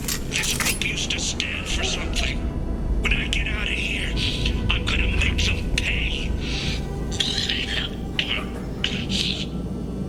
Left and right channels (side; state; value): both; identical; correlation 1.00